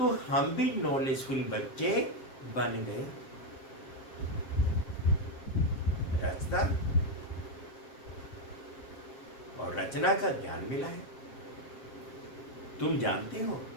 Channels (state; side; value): late; right; 7.7 ms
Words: हम भी नॉलेजफुल बच्चे बन गए। रचना और रचना का ज्ञान मिला है। तुम जानते हो,